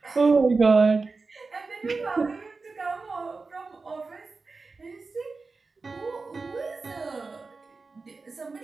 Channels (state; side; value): quieter; left; 4.1 dB